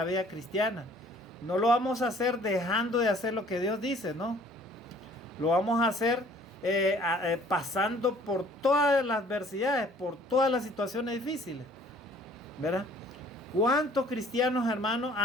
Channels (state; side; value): normal; both; correlation 0.55